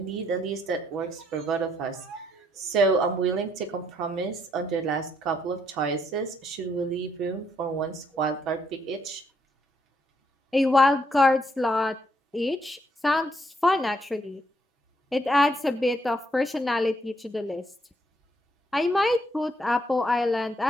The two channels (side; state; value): both; normal; correlation 0.73